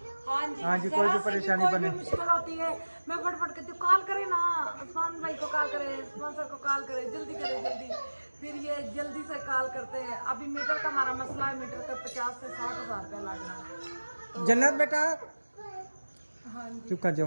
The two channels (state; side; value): inverted; both; correlation -1.00